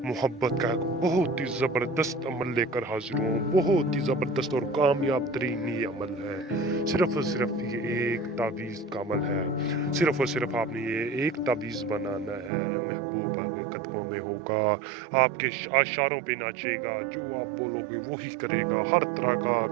मोहब्बत का एक बहुत ही ज़बरदस्त अमल लेकर हाजिर हूँ। बहुत ही ज़बरदस्त और कामयाब तरीन ये अमल है। सिर्फ और सिर्फ ये एक तावीज़ का अमल है। सिर्फ और सिर्फ आपने ये एक तावीज़ बनाना है, महबूब आपके कदमों में होगा, आपके इशारों पे नाचेगा, जो आप बोलोगे वही करेगा, हर तरह का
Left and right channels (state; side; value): drops out; left; at 12.5 s